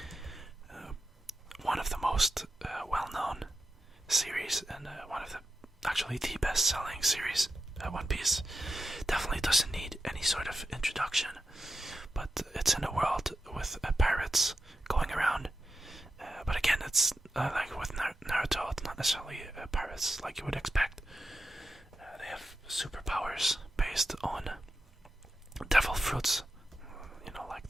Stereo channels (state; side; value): normal; both; correlation 0.90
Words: One of the most well-known series, and one of actually the best-selling series. One Piece definitely doesn't need any sort of introduction, but it's in a world with pirates going around. But again, it's like with Naruto, it's not necessarily pirates like you would expect. They have superpowers based on devil fruits. Like